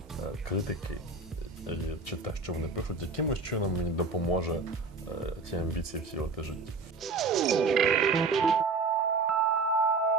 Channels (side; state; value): left; quieter; 3.9 dB